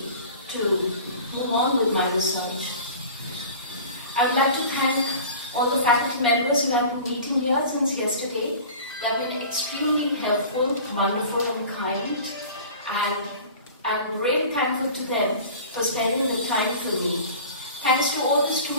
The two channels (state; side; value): inverted; both; correlation -0.40